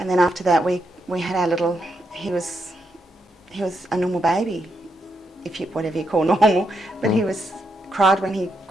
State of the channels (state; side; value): normal; both; correlation 0.81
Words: then after that we had our little, he was a normal baby, whatever you call normal, but he cried when he